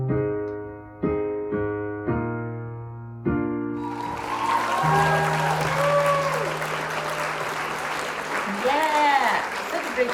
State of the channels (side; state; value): both; identical; correlation 1.00